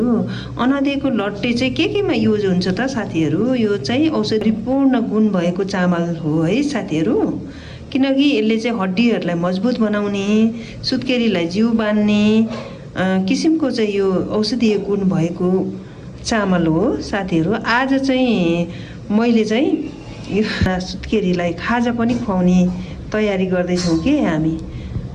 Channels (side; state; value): both; identical; correlation 1.00